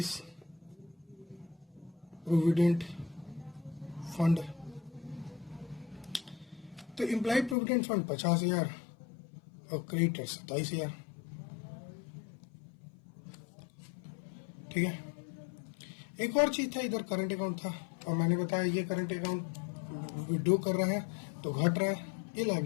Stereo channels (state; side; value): drops out; right; at 7.6 s